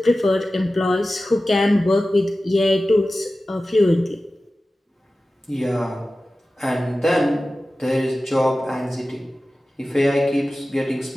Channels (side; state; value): both; normal; correlation 0.95